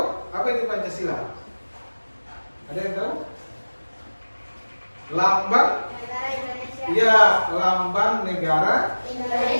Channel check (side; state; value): both; inverted; correlation -1.00